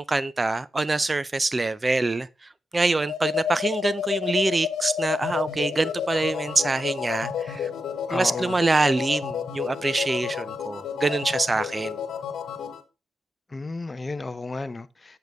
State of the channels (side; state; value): both; normal; correlation 0.88